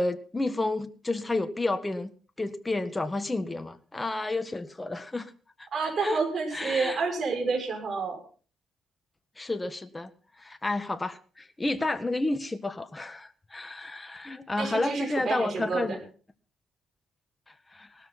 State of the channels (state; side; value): normal; both; correlation 0.88